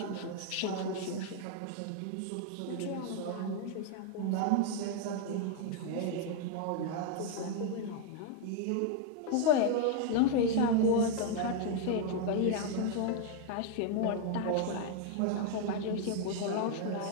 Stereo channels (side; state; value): both; different; correlation 0.00